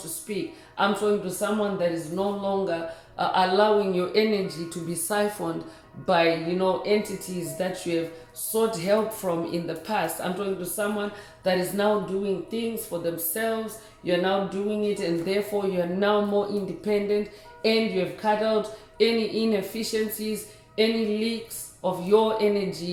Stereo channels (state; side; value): identical; both; correlation 1.00